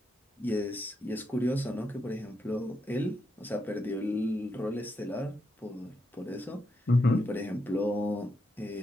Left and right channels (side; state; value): both; normal; correlation 0.82